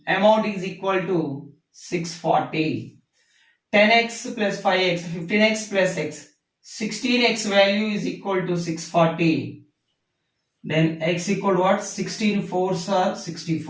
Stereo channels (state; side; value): identical; both; correlation 1.00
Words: amount is equal to 640. 10x plus 5x, 15x plus x, 16x value is equal to 640. Then x equal to what? 16 4s are